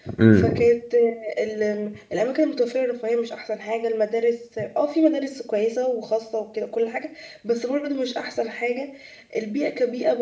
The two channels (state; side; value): identical; both; correlation 1.00